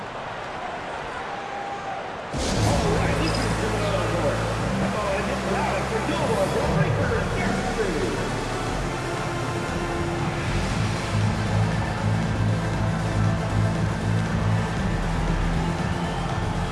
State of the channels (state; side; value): identical; both; correlation 1.00